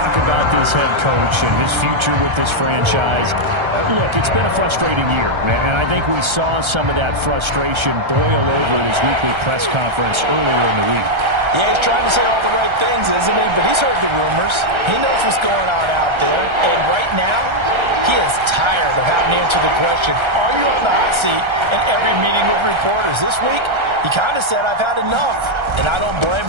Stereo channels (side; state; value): left; late; 1.3 ms